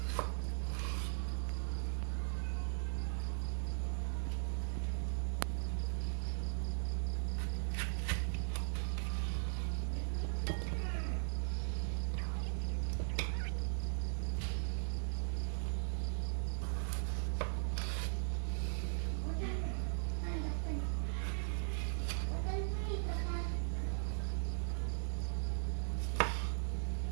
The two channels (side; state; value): left; silent; 52 dB below the other